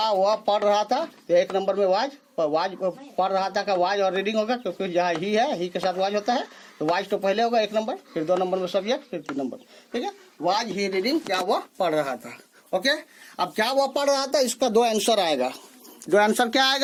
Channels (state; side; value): identical; both; correlation 1.00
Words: वह पढ़ रहा था, तो 1 नंबर में वाज पढ़ रहा था का वाज और रीडिंग होगा, क्योंकि जहाँ ही है, ही के साथ वाज होता है, तो वाज तो पहले होगा 1 नंबर, फिर 2 नंबर में सब्जेक्ट, फिर 3 नंबर, ठीक है। वाज ही रीडिंग, क्या वह पढ़ रहा था। ओके, अब क्या वह पढ़ रहा था, इसका 2 आंसर आएगा। 2 आंसर क्या